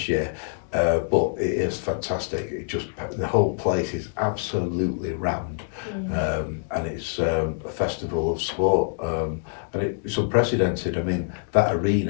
year, but it is fantastic. The whole place is absolutely rammed, and it's a festival of sport, and it's unprecedented. I mean, that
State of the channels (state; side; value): silent; right; digital silence